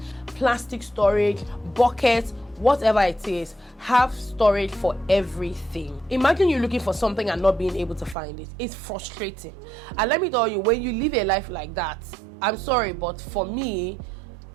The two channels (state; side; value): drops out; left; at 8.2 s